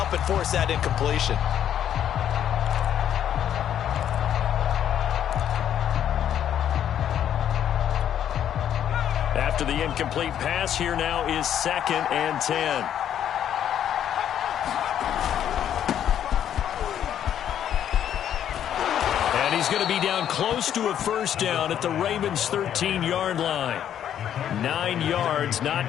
force that incompletion. After the incomplete pass, here now is 2nd and 10. And he's going to be down close to a first down at the Ravens' 13-yard line. 9 yards,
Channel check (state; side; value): quieter; right; 10.0 dB